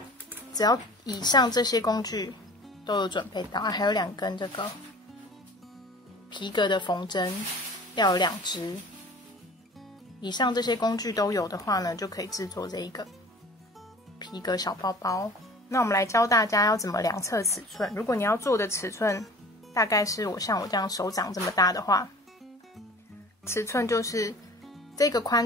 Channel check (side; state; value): both; normal; correlation 0.44